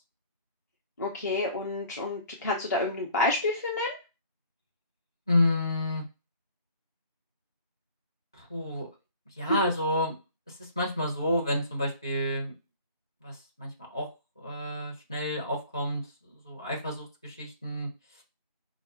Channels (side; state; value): both; inverted; correlation -0.52